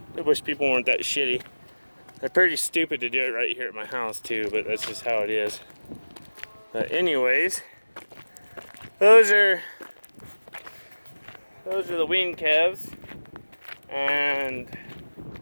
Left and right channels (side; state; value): both; inverted; correlation -1.00